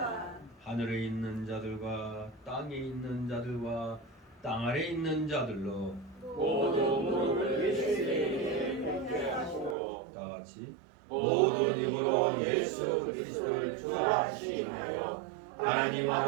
하늘에 있는 자들과 땅에 있는 자들과 땅 아래 있는 자들로 모두 무릎을 예수에게 꿇게 하시고 다 같이 모든 입으로 예수 그리스도를 주라 시인하여 하나님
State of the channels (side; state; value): left; drops out; at 9.8 s